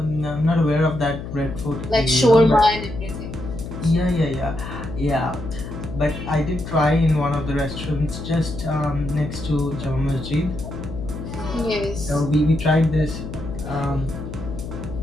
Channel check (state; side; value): noise; left; hum, 9 dB below the sound